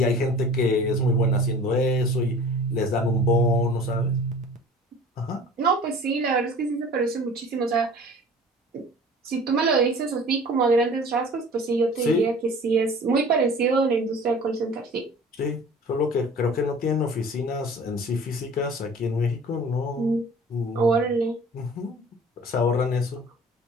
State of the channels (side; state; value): both; normal; correlation 0.44